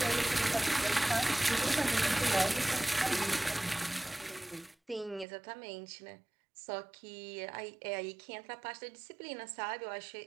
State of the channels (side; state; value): left; drops out; at 5.2 s